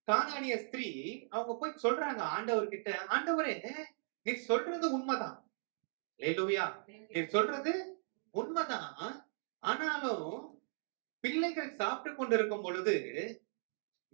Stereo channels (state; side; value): silent; left; digital silence